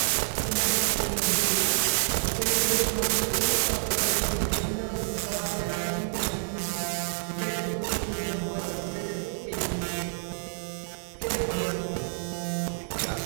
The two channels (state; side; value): silent; left; digital silence